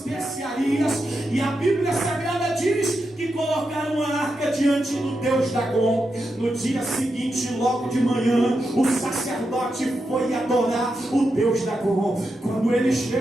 E a Bíblia Sagrada diz que colocaram a arca diante do Deus Dagom. No dia seguinte, logo de manhã, o sacerdote foi adorar o Deus Dagom. Quando ele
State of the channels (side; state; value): both; normal; correlation 0.87